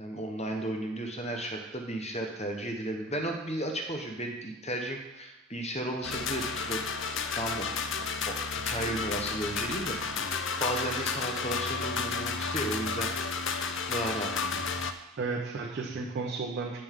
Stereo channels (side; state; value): both; normal; correlation 0.35